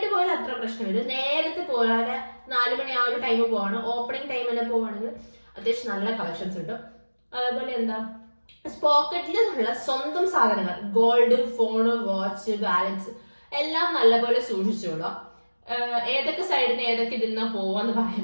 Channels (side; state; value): both; inverted; correlation -1.00